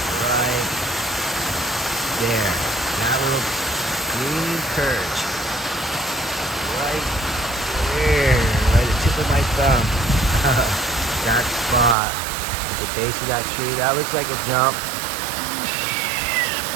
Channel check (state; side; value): drops out; left; at 12.0 s